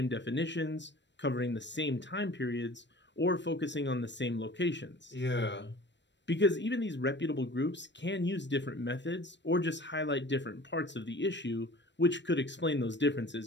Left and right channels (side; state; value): right; late; 0.52 ms